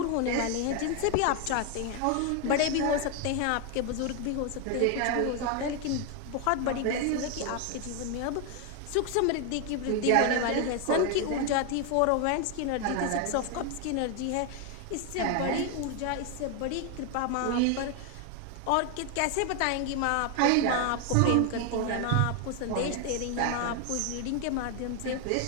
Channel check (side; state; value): both; different; correlation 0.01